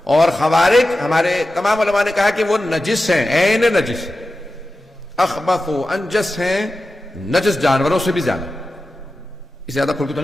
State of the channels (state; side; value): normal; both; correlation 0.93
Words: اور خوارج ہمارے تمام علماء نے کہا کہ وہ نجس ہیں، عین نجس، اخبث و انجس ہیں، نجس جانوروں سے بھی زیادہ۔ اس سے زیادہ کھل کے تو